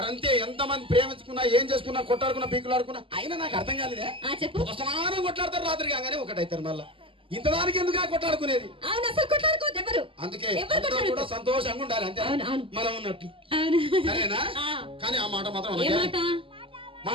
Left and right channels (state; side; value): late; left; 0.25 ms